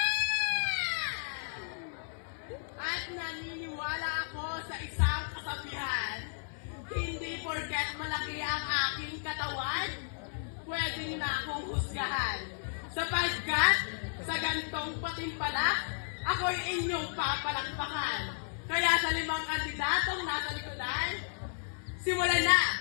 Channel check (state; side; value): silent; right; 55 dB below the other